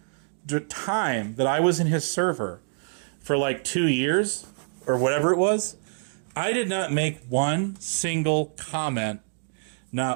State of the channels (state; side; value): silent; left; 61 dB below the other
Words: time that I was in his server for like 2 years or whatever it was, I did not make one single comment,